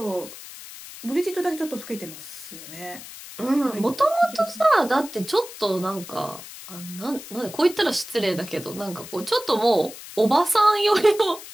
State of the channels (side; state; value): left; noise; hiss, 14 dB below the sound